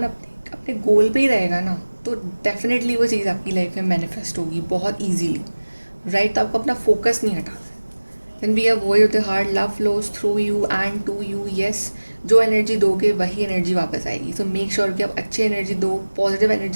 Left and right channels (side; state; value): both; inverted; correlation -1.00